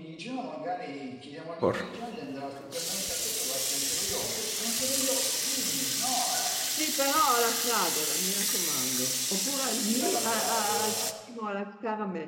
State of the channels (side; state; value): both; identical; correlation 1.00